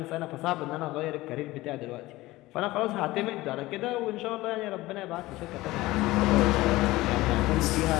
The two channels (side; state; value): right; quieter; 18.5 dB